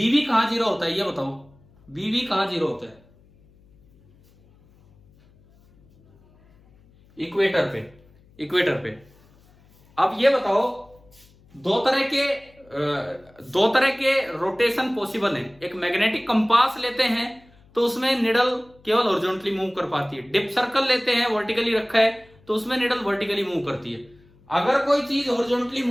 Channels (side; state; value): left; noise; hum, 29 dB below the sound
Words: कहां 0 होता है ये बताओ? BB कहां 0 होता है? इक्वेटर पे, इक्वेटर पे। अब ये बताओ, दो तरह के रोटेशन पॉसिबल है। एक मैग्नेटिक कंपास लेते हैं तो उसमें निडल केवल हॉरिजॉन्टली मूव कर पाती है। डिप सर्कल लेते हैं, वर्टिकली रखा है, तो उसमें निडल वर्टिकली मूव करती है। अगर कोई चीज हॉरिजॉन्टली